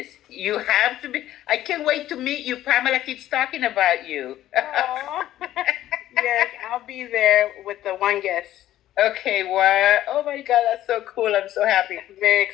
You have to be. I can't wait to meet you. Pamela keeps talking about you. Yes, I'll be there with the one guest. Okay, wow. Oh my God, that's so cool. I'm so happy. Very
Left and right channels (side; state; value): right; quieter; 13.4 dB